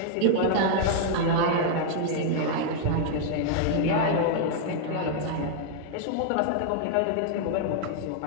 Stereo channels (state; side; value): different; both; correlation 0.00